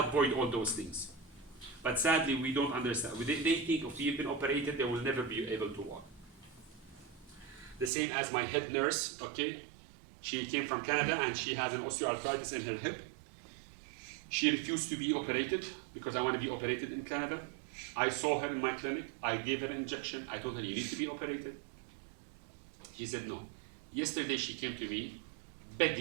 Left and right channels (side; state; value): left; drops out; at 7.9 s